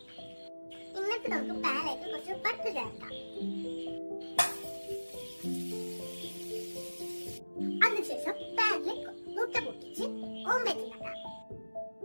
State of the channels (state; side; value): inverted; both; correlation -1.00